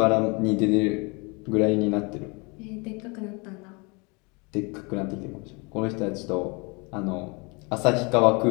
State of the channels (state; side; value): quieter; right; 29.9 dB